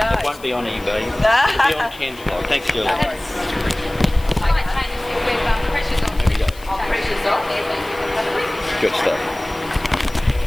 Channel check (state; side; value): noise; left; hiss, 21 dB below the sound